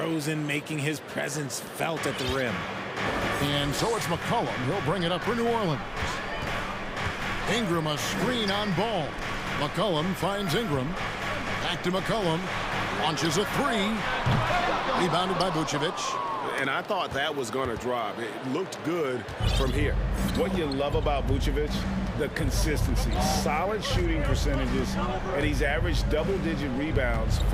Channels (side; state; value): both; identical; correlation 1.00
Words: making his presence felt at the rim. And so it's McCollum. He'll bring it up for New Orleans. Ingram a screen on Ball. McCollum finds Ingram. Back to McCollum. Launches a three. Rebounded by Vucevic. And I thought that was going to drop. It looked good from here. What you love about Vucevic, the consistency. Solid shooting percentages, and he's averaged double-digit rebounds